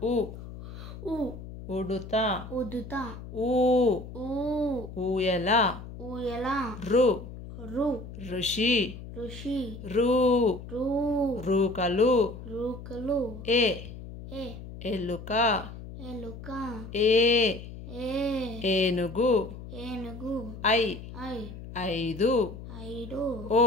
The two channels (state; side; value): noise; left; hum, 12 dB below the sound